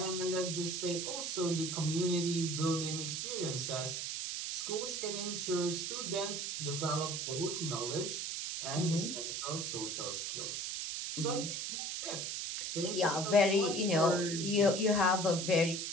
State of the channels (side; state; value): right; noise; hiss, 3 dB below the sound